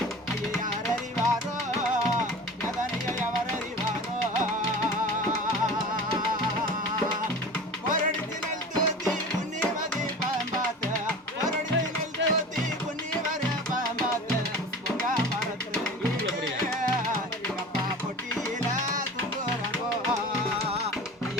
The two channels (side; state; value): both; normal; correlation 0.36